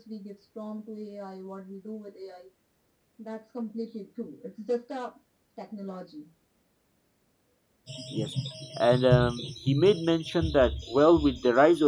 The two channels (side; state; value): both; identical; correlation 1.00